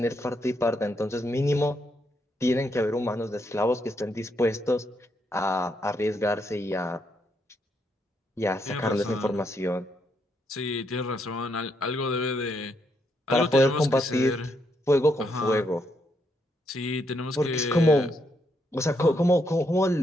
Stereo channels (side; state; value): both; normal; correlation 0.77